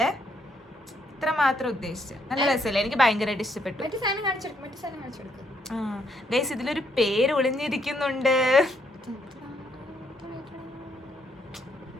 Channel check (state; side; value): normal; both; correlation 0.72